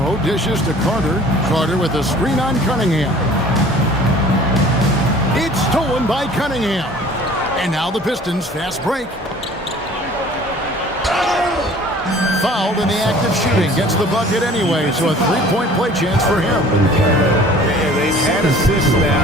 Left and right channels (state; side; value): normal; both; correlation 0.49